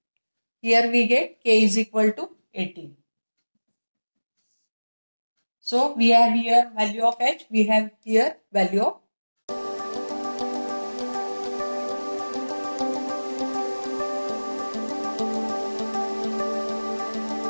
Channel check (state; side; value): inverted; both; correlation -1.00